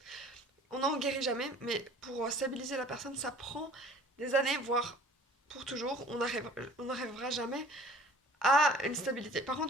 On n'en guérit jamais, mais pour stabiliser la personne, ça prend des années, voire pour toujours. On n'arrivera jamais à une stabilité. Par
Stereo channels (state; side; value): normal; both; correlation 0.50